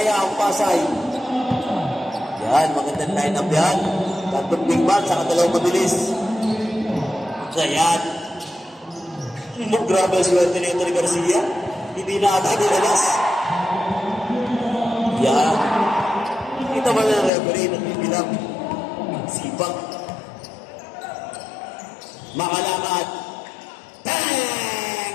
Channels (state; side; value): drops out; right; at 17.3 s